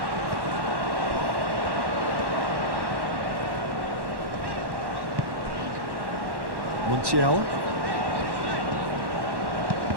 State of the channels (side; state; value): left; late; 1.1 ms